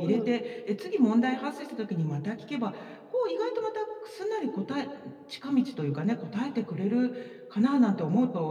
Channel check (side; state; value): both; identical; correlation 1.00